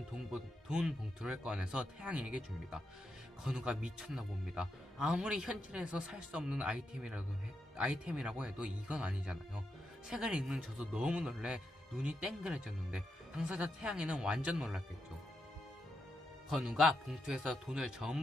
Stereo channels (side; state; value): both; normal; correlation 0.84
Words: 돈 봉투를 꺼내서 태양이에게 줍니다. 건우가 미쳤나 봅니다. 아무리 현실에서 살 수 없는 아이템이라고 해도 이건 아니잖아요. 책을 읽는 저도 너무 놀래 눈이 땡그레졌는데 당사자 태양이는 완전 놀랐겠죠. 건우가 봉투에서 돈을